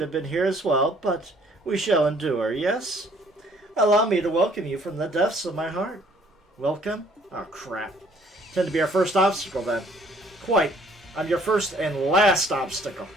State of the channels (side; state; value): both; normal; correlation 0.60